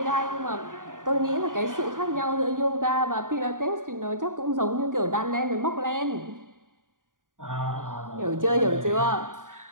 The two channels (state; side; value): late; left; 0.89 ms